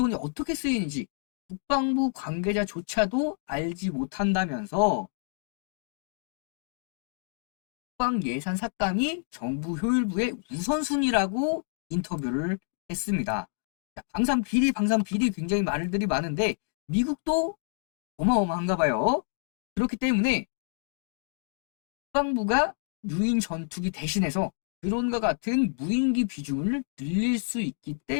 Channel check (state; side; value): silent; right; digital silence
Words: 어떻게 쓰이는지 국방부 관계자조차도 알지 못한다면서 국방 예산 삭감이 정부 효율부의 우선순위라고 인터뷰를 했습니다. 방산 비리 굉장히 말들이 많은데 미국도 어마어마한가 봐요. 그렇기 때문에 국방부가 유인 전투기 대신해서 드론과 같은 무인기 비중을 늘릴 수 있기